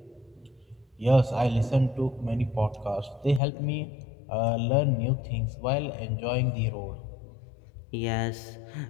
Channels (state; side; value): drops out; right; at 3.4 s